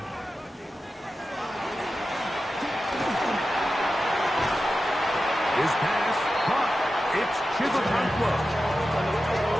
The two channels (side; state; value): both; normal; correlation 0.92